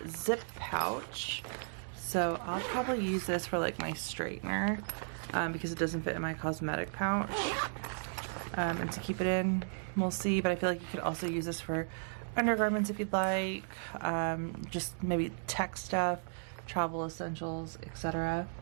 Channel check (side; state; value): left; silent; digital silence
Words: zip pouch. So I'll probably use this for like my straightener because it doesn't fit in my cosmetic pouch. And to keep it in, we'll see. But I feel like you could also use this for undergarments if you'd like. Just maybe tech stuff, travel essentials, etc.